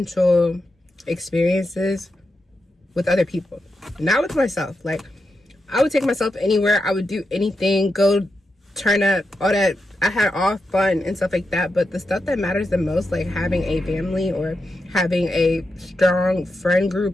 experiences with other people, not with myself. Like, I would take myself anywhere, I would do anything, go turn up, all that. I had all fun and stuff like that, but the stuff that matters the most, like having a family or having a strong friend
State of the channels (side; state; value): both; normal; correlation 0.87